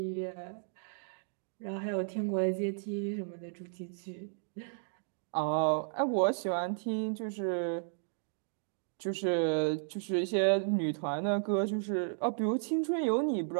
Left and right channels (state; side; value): silent; left; digital silence